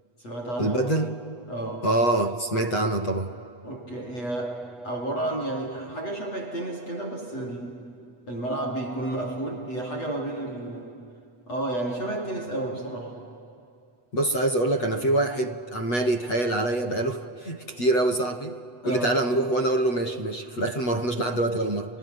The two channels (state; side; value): late; right; 8.2 ms